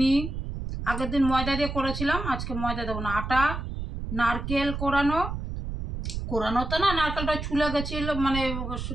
আগের দিন ময়দা দিয়ে করেছিলাম, আজকে ময়দা দেবো না। আটা, নারকেল কোরানো তো না, নারকেলটা ছুলে গেছিলো, মানে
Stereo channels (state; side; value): noise; right; rumble, 5 dB below the sound